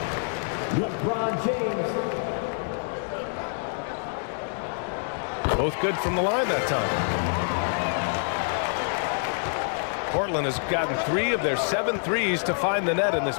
LeBron James. Both good from the line that time. Portland has gotten 3 of their 7 threes to find the net in this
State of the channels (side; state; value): right; silent; 60 dB below the other